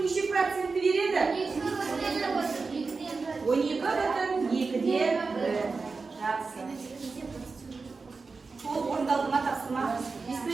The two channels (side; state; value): left; quieter; 4.3 dB